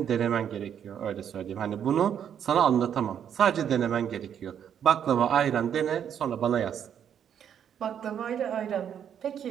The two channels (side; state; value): left; quieter; 8.9 dB